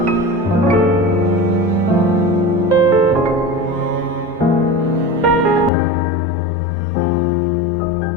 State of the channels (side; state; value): right; drops out; at 5.7 s